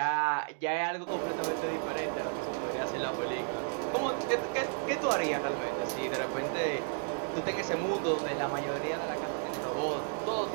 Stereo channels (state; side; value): silent; left; 56 dB below the other